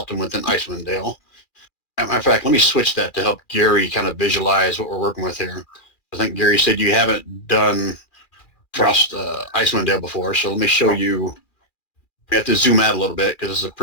within Icewind Dale. As a matter of fact, let me switch that to help Gary kind of visualize what we're working with here. I think Gary said you haven't done Icewind Dale before, so let me show you We have to zoom out a little bit because it's a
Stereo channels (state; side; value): late; right; 2.4 ms